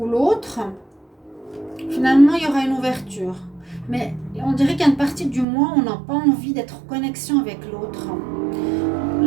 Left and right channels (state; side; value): drops out; left; at 5.5 s